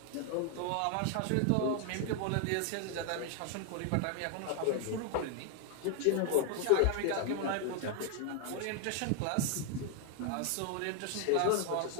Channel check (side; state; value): both; different; correlation 0.00